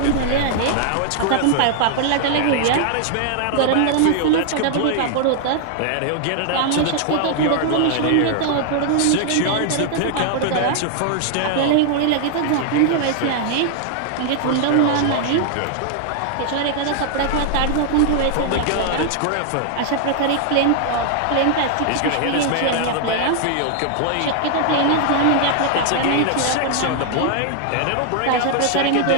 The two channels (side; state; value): both; different; correlation 0.00